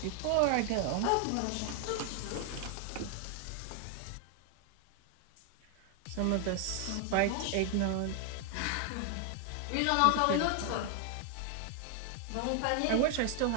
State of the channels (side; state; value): both; different; correlation 0.00